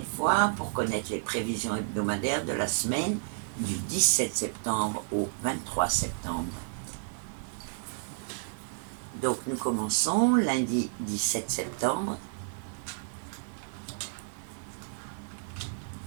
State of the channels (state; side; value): silent; left; 57 dB below the other